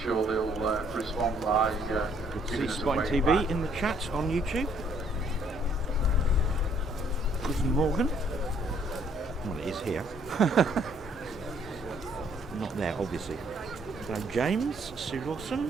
they'll respond by giving us a Spotting wave TV back. in the chat on YouTube. Guten Morgen. Well, it is here. Not there, obviously. Hello, James, Sue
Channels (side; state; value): both; normal; correlation 0.65